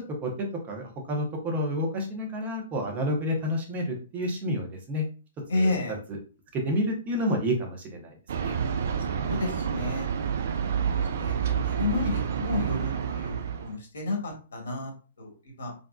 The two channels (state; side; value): inverted; both; correlation -0.45